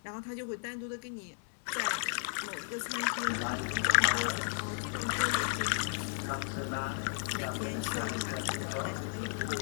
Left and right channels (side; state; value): right; silent; digital silence